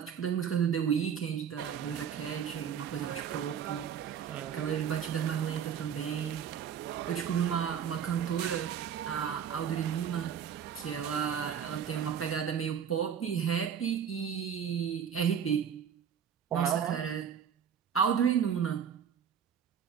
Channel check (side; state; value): left; quieter; 8.0 dB